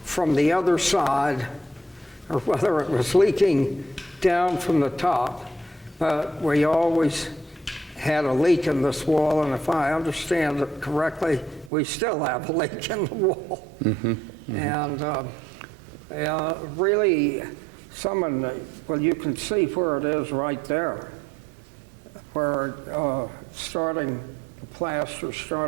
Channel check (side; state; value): left; drops out; at 11.7 s